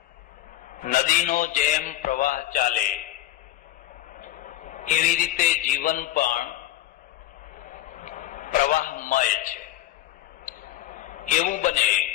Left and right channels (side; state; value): right; quieter; 14.8 dB